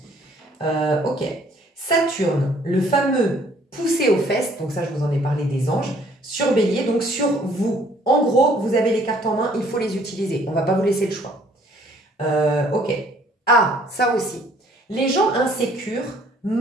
Ok. Saturne, le fameux poussé aux fesses, donc ça, je vous en ai parlé des anges, sur Bélier, donc sur vous. En gros, vous avez les cartes en main, il faut les utiliser. On ne va pas vous laisser le choix. Ok. Ah, ça aussi. Les gens insécures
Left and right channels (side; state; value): both; normal; correlation 0.60